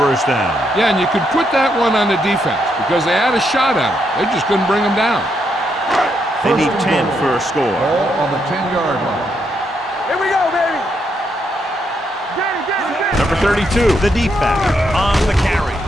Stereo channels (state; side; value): normal; both; correlation 0.78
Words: down. Yeah, and you could put that one on the defense because they had a shot at him. They just couldn't bring him down. They need 10 for a score. Ball on the 10-yard line. Here we go, baby. Get it. Number 32, the deep back on the carry.